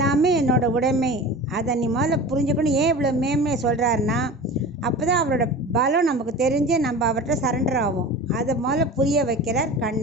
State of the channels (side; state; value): both; normal; correlation 0.34